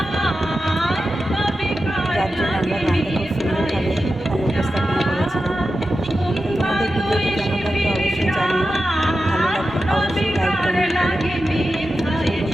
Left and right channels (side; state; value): both; normal; correlation 0.91